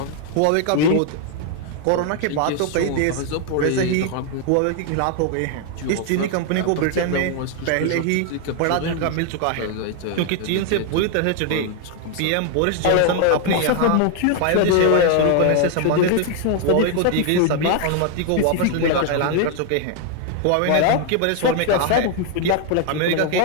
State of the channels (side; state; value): both; different; correlation 0.00